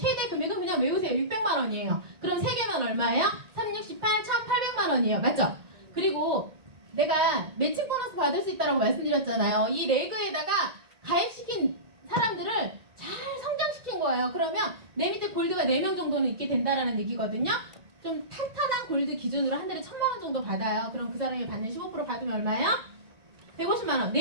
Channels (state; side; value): late; left; 1.8 ms